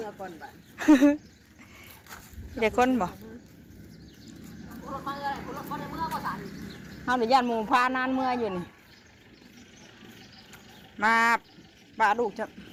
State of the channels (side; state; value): both; identical; correlation 1.00